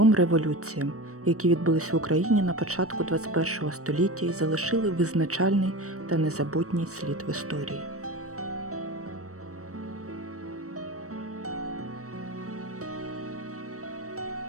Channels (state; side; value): late; left; 0.65 ms